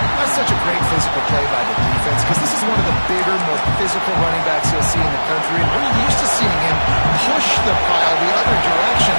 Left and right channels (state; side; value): inverted; both; correlation -1.00